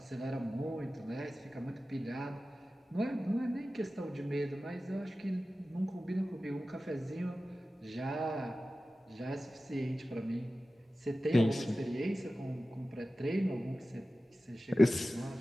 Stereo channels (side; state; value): both; normal; correlation 0.95